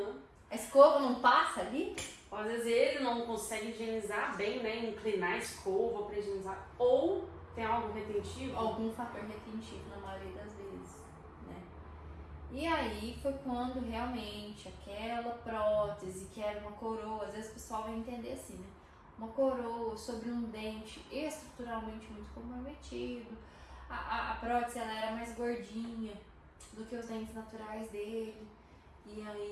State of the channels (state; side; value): identical; both; correlation 1.00